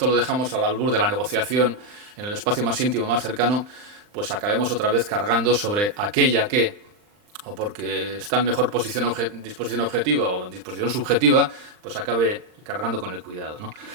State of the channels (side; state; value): left; late; 39 ms